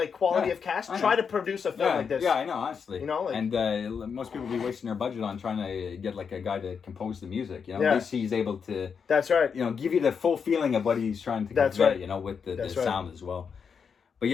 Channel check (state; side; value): quieter; right; 6.3 dB